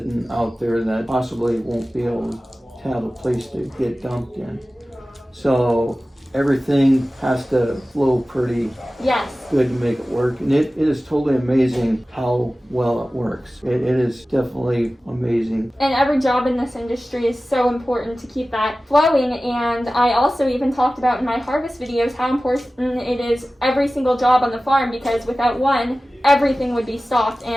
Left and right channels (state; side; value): normal; both; correlation 0.96